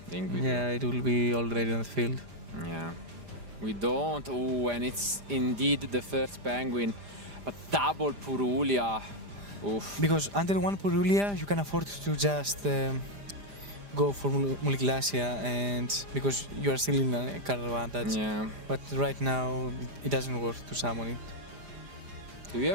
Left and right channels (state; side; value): late; left; 5.0 ms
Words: think we do. It will be already on the field. Yeah. We don't. Oh, and it's indeed the first Penguin. But double Purulia. Oof. Because under one Purulia, you can afford to just go for Muliglacia, and because you are still in a card advantage. Yeah. But right now, it doesn't work to summon it. Do you